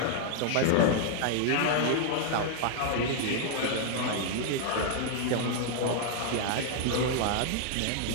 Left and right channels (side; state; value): both; different; correlation 0.00